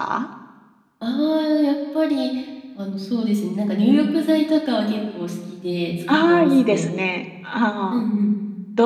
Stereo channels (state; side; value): identical; both; correlation 1.00